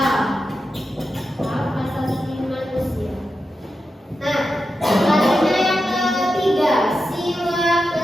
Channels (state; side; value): normal; both; correlation 0.89